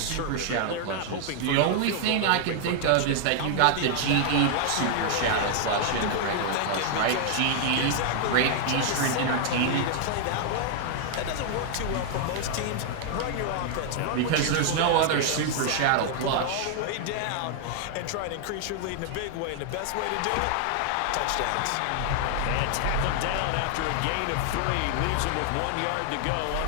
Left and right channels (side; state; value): both; different; correlation 0.00